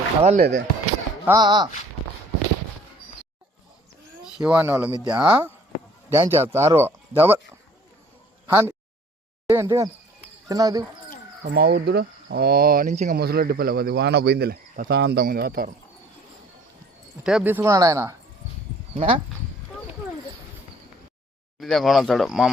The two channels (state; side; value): normal; both; correlation 0.54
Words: కదలలేదే. శివాని వాళ్ళ మిద్య డ్యాన్స్ చేస్తారు డబల్ హ్యాండ్ ఏంటి చిన్నది మా ఊరుదుడు నుంచి ఇంకా ముసలొడ్డి పిల్ల అది వాన పోయిందిలే, ప్రశాంతంగా ఉంది వాతావరణం. టేప్ తీసుకున్నాడు ఆయన ఇదే కొనతాడు మా